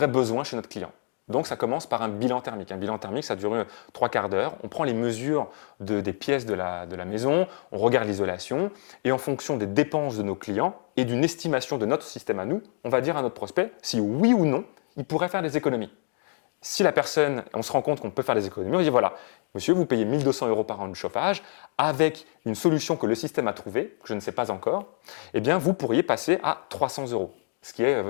besoin chez notre client. Donc, ça commence par un bilan thermique. Un bilan thermique, ça dure 3/4 d'heure. On prend les mesures des pièces de la maison, on regarde l'isolation et en fonction des dépenses de nos clients et d'une estimation de notre système à nous, on va dire à notre prospect si oui ou non, il pourrait faire des économies. Si la personne, on se rend compte qu'on peut faire des économies, on dit voilà, monsieur, vous payez 1 200 € par an de chauffage avec une solution que le système a trouvée, que je ne sais pas encore, eh bien, vous pourriez passer à 300 €. Ce qui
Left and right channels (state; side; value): silent; right; 55 dB below the other